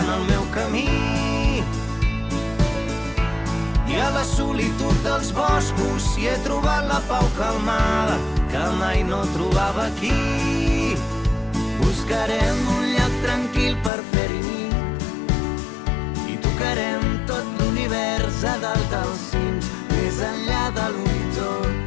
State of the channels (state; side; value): drops out; right; at 13.9 s